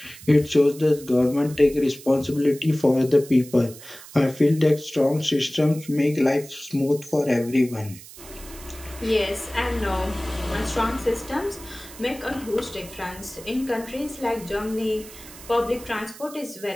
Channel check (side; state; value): right; noise; hiss, 17 dB below the sound